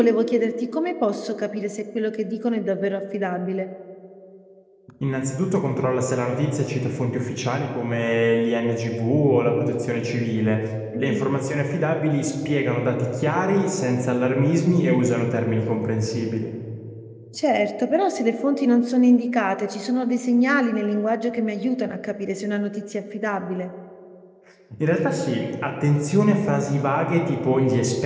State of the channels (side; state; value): both; identical; correlation 1.00